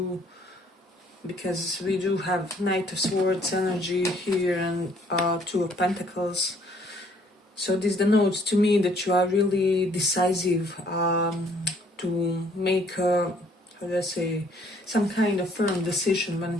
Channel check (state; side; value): normal; both; correlation 0.62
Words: because we do have Knight of Swords energy here and Two of Pentacles. So this denotes to me that you are really decisive to make how do I say, some kind of firm decision when